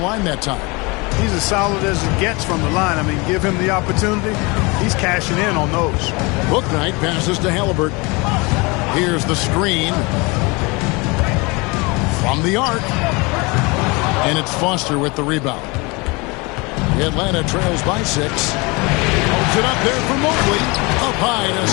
that time. He's as solid as it gets from the line. I mean, give him the opportunity. He's cashing in on those. Bouknight passes to Halliburton. Here's the screen. From the arc. And it's Foster with the rebound. Atlanta trails by 6. Holds it up there for Mobley. Up high to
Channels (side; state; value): right; quieter; 26.8 dB